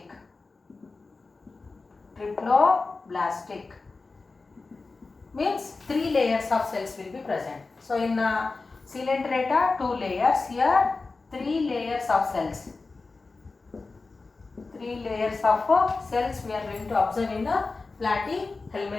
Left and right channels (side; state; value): right; quieter; 3.9 dB